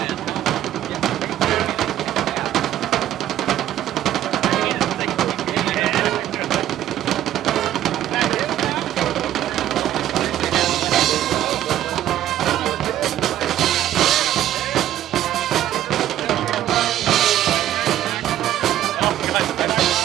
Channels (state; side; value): quieter; left; 12.4 dB